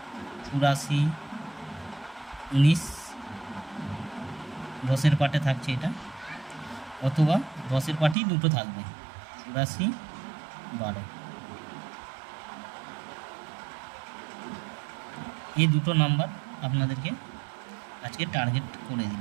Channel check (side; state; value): left; drops out; at 8.2 s